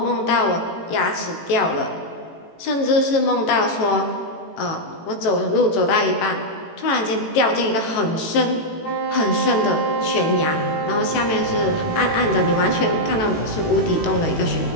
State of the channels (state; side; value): late; right; 18 ms